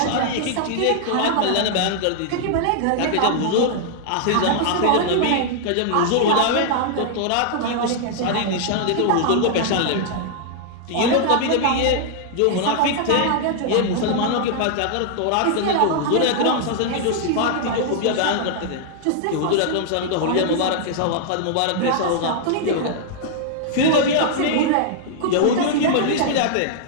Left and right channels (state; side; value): different; both; correlation -0.01